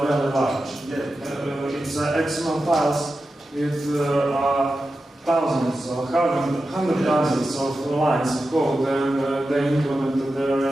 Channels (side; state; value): both; normal; correlation 0.91